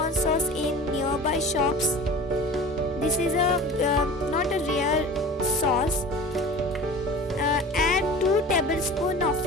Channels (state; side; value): normal; both; correlation 0.38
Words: sauce in nearby shops. This is not a real sauce. Add 2 tablespoons